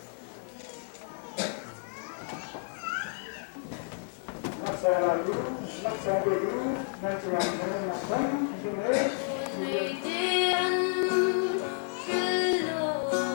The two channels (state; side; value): silent; right; 57 dB below the other